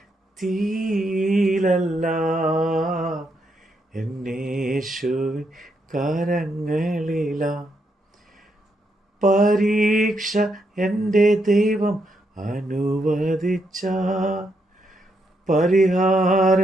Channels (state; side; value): normal; both; correlation 0.79